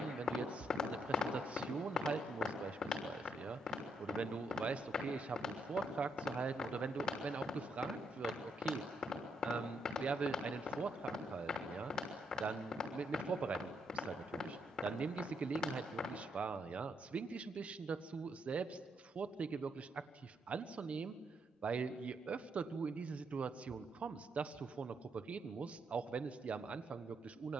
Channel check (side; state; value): both; normal; correlation 0.77